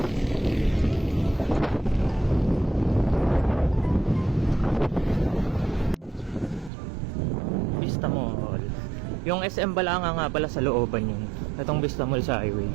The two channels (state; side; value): drops out; left; at 6.7 s